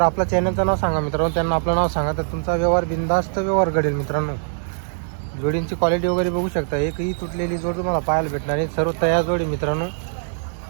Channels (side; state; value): left; silent; digital silence